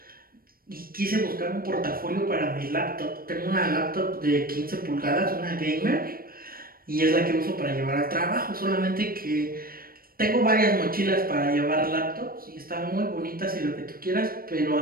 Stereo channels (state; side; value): late; left; 0.43 ms